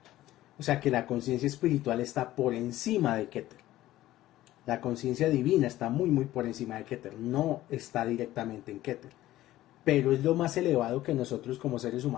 O sea que la conciencia espiritual está por encima de Keter. La conciencia divina está muy por encima de Keter, no está directamente en Keter. Pero es lo más elevado que nosotros como seres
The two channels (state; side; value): quieter; right; 15.1 dB